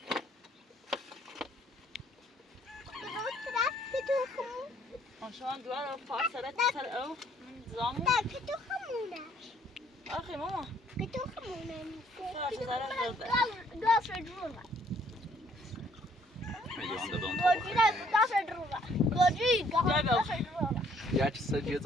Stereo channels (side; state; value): both; normal; correlation 0.63